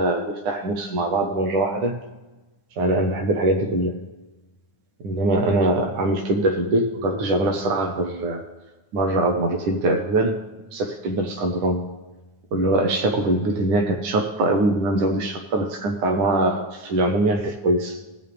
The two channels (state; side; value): late; left; 9.6 ms